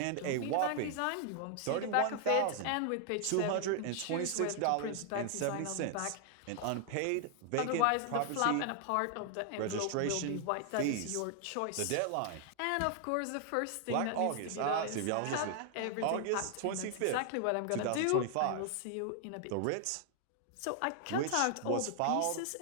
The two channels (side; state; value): both; different; correlation 0.00